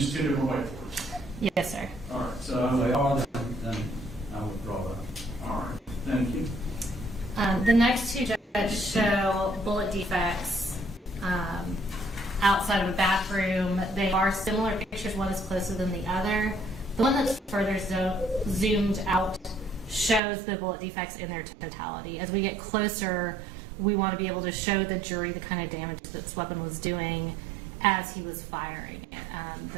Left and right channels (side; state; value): left; drops out; at 20.2 s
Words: two different whiteboards. Yes, sir. All right, If so, they are, then I withdraw that. all right, thank you. The next two, Judge, show bullet defects outside of a bathroom. They are similar pictures. One is closer than the other. The one that's further zoomed out shows the bullet defects in their totality. As we get closer, we want to be able to show the jury the kind of damage that this weapon was doing as he was firing it.